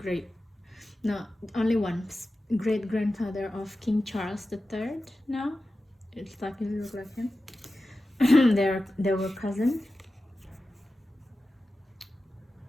only one great grandfather of King Charles III. Now it's starting to look like him. they were cousins.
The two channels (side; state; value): both; normal; correlation 0.94